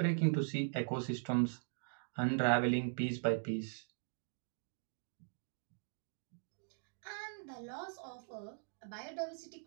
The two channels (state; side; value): silent; left; digital silence